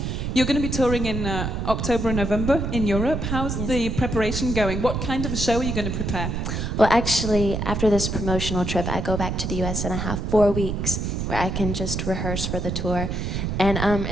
You're going to be touring in October and November in Europe. How's the preparation going? What kind of a show are you going to prepare? Well, actually, after this promotional trip, I go back to the US and I have 4 weeks where I can just rehearse for the tour. And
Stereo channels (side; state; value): right; noise; rumble, 2 dB below the sound